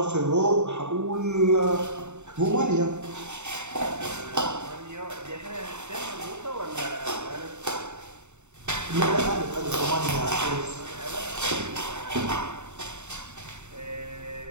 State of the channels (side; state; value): left; late; 0.83 ms